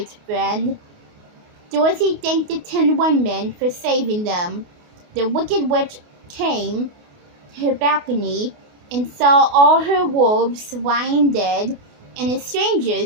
friend." Dorothy thanked the Tin Woodman for saving them. The Wicked Witch came to her balcony and saw all her wolves lying dead and the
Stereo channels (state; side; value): late; left; 28 ms